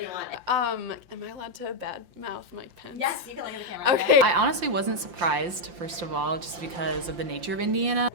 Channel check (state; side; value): late; left; 5.7 ms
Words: want. Am I allowed to badmouth Mike Pence? Yes, you can look at the camera. Okay. I honestly wasn't surprised, first of all, just because of the nature of Indiana.